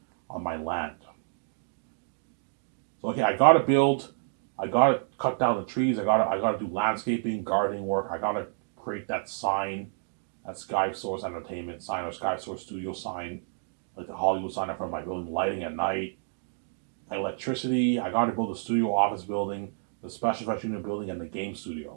on my land. So okay, I gotta build, I gotta cut down the trees, I gotta do landscaping, gardening work, I gotta create that sign, that Sky Source Entertainment sign or Sky Source Studio sign, like the Hollywood sign in front of my building, lighting at night, electricity. I got to build a studio office building, the special effects unit building, and the game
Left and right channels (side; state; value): left; silent; digital silence